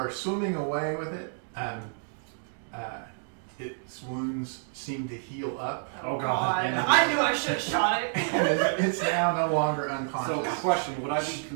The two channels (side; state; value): left; silent; digital silence